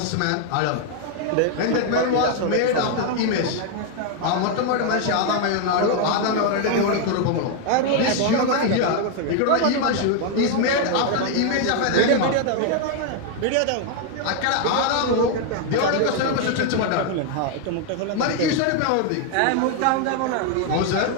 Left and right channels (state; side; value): different; both; correlation 0.00